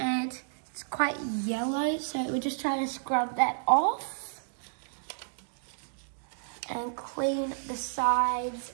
it's quite yellow, so we're just trying to scrub that off. And clean the sides,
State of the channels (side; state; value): left; silent; digital silence